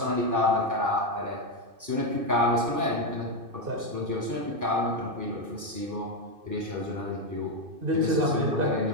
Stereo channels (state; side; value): late; left; 2.5 ms